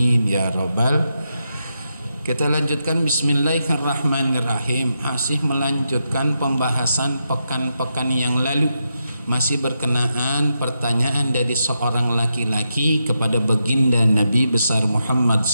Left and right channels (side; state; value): both; inverted; correlation -0.85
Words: ya rabbal. Kita lanjutkan Bismillahirrahmanirrahim. Masih melanjutkan pembahasan pekan-pekan yang lalu, masih berkenaan pertanyaan dari seorang laki-laki kepada baginda Nabi besar Muhammad